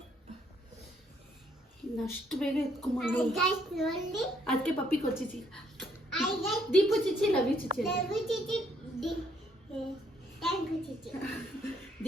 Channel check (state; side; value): normal; both; correlation 0.69